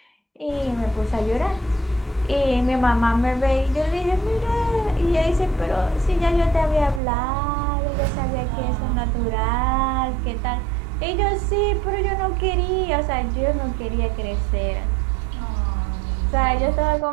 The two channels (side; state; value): left; drops out; at 7.0 s